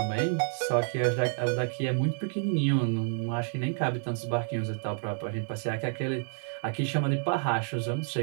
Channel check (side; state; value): left; silent; 56 dB below the other